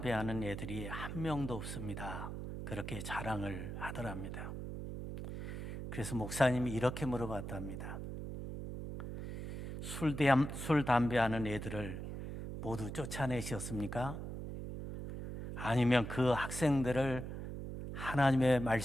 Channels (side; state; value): right; noise; hum, 7 dB below the sound